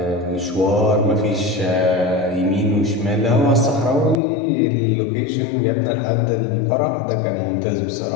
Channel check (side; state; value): right; drops out; at 4.2 s